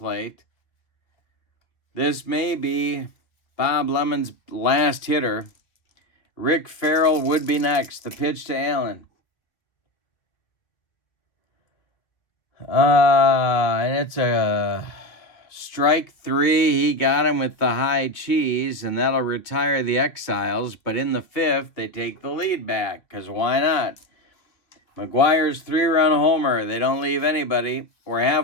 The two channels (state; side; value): late; right; 1.9 ms